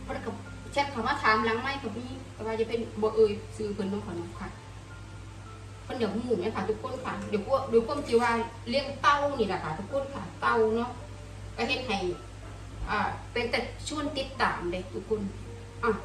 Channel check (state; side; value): identical; both; correlation 1.00